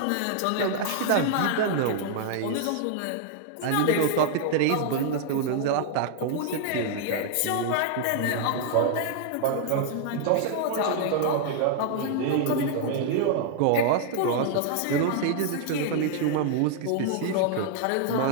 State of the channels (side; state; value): both; different; correlation -0.01